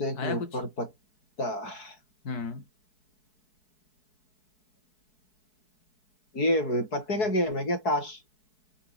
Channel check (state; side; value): late; right; 4.7 ms